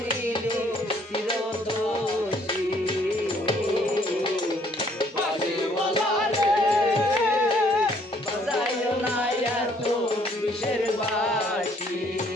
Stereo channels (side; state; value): both; normal; correlation 0.63